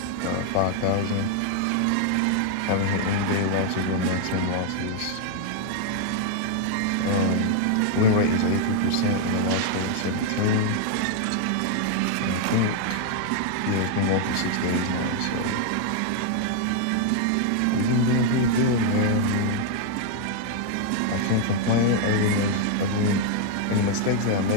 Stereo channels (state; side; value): different; both; correlation 0.00